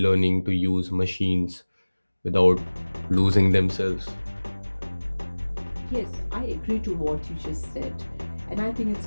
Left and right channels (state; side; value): inverted; both; correlation -1.00